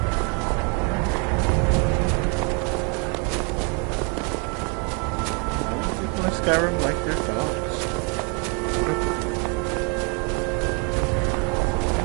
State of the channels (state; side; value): quieter; left; 34.6 dB